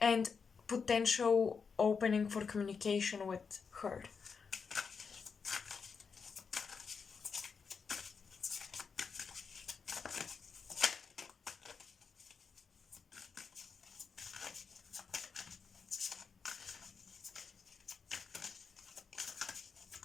potential opening for communication with her.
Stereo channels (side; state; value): right; quieter; 5.6 dB